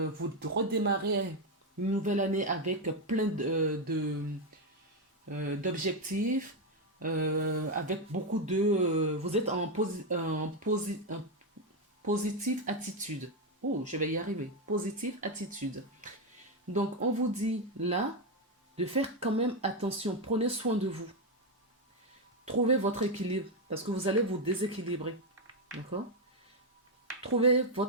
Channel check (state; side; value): normal; both; correlation 0.06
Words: redémarrez une nouvelle année avec plein d'objectifs. Avec beaucoup de... vous êtes en positive attitude. Oh, je vais y arriver. Positive attitude. Donc, on vous dit là de faire quand même attention. Prenez soin de vous. Trouvez votre équilibre parce que vous allez vous déséquilibrer. D'accord? Trouvez